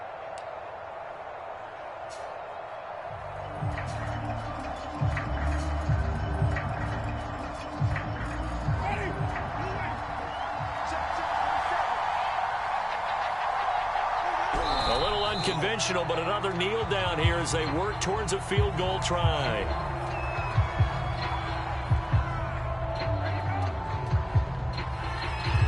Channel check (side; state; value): both; identical; correlation 1.00